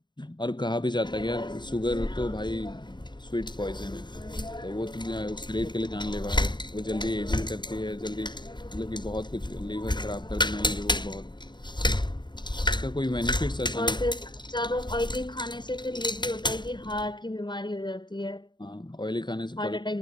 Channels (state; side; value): late; right; 0.22 ms